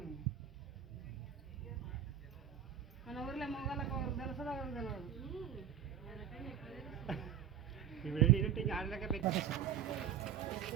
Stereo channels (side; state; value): left; quieter; 9.3 dB